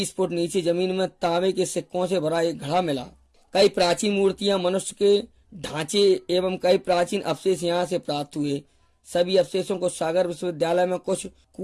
फुट नीचे जमीन में तांबे के सिक्कों से भरा एक घड़ा मिला। कई प्राचीन मूर्तियां, मनुष्य के ढांचे एवं कई प्राचीन अवशेष यहाँ से प्राप्त हुए। सभी अवशेषों को सागर विश्वविद्यालय में, कुछ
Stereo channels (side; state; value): both; identical; correlation 1.00